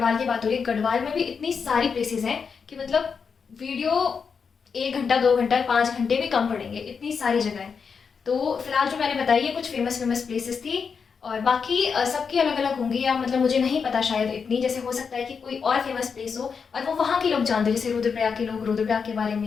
की बात हो रही है। गढ़वाल में भी इतनी सारी प्लेसेस हैं कि मतलब वीडियो 1 घंटा 2 घंटा 5 घंटे भी कम पड़ेंगे, इतनी सारी जगह है। तो फिलहाल जो मैंने बताई है कुछ फेमस प्लेसेस थी, और बाकी सबकी अलग अलग होंगी, या मतलब मुझे नहीं पता शायद इतनी। जैसे हो सकता है कि कोई और फेमस प्लेस हो और वो वहाँ के लोग जानते हैं, जैसे रुद्रप्रयाग के लोग रुद्रप्रयाग के बारे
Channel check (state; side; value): quieter; right; 5.9 dB